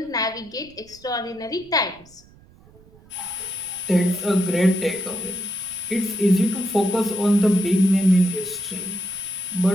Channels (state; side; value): noise; right; rumble, 26 dB below the sound